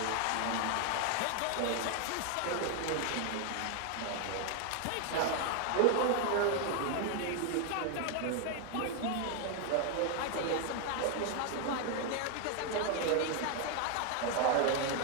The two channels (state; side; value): different; both; correlation 0.01